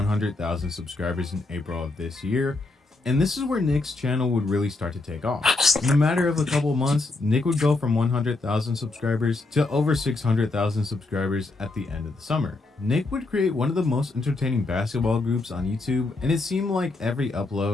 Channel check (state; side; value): quieter; right; 3.2 dB